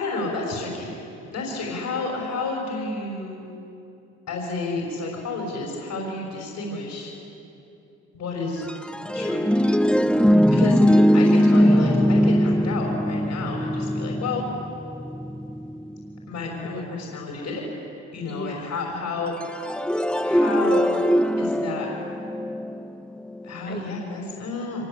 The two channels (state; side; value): normal; both; correlation 0.84